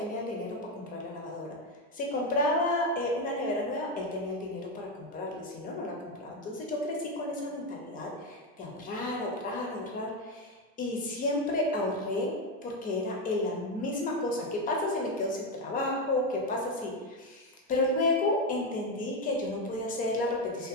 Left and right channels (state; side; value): normal; both; correlation 0.10